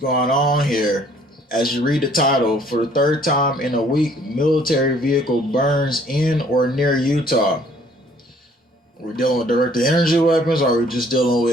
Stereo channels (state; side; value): normal; both; correlation 0.60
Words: on here? As you read the title, for the third time in a week, military vehicle burns in or near Utah. We're dealing with directed energy weapons, or are we just dealing